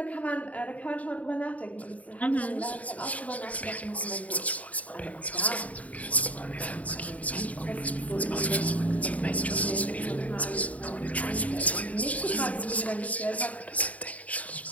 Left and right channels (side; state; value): right; late; 0.069 ms